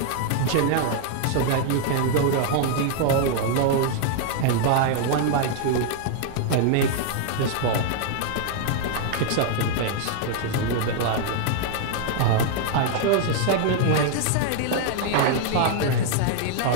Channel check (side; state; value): both; different; correlation 0.00